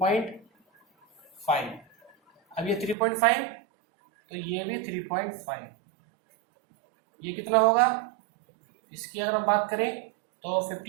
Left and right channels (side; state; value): left; drops out; at 3.0 s